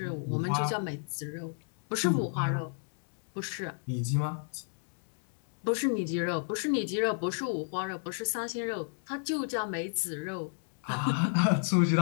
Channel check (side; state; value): right; silent; 56 dB below the other